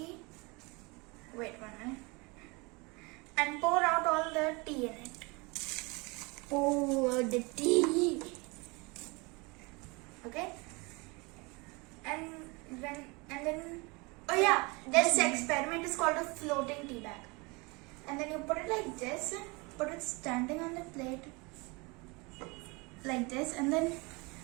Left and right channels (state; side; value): quieter; left; 27.4 dB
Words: and pour out all the tea in it. Oh, the tea. Okay? And then oh yeah, this experiment is called a floating tea bag. And then you put it like this, put it standing on the plate like this, and then